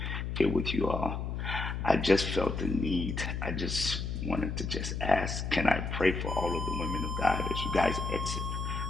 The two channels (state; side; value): noise; left; hum, 3 dB below the sound